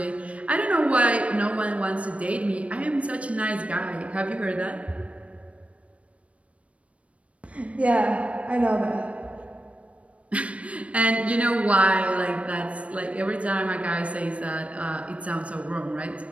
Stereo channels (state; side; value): late; left; 0.064 ms